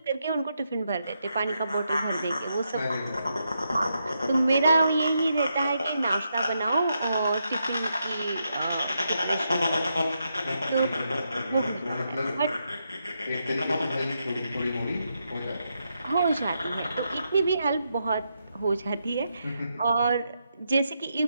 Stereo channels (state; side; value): inverted; both; correlation -0.82